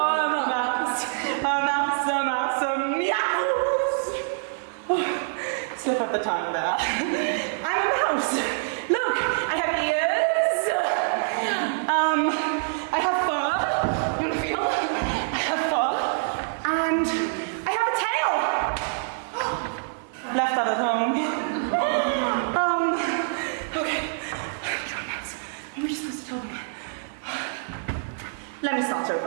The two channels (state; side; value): silent; left; digital silence